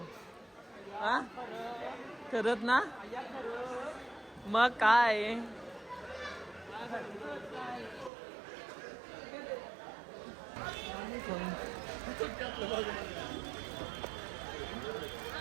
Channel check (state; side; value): drops out; left; at 8.1 s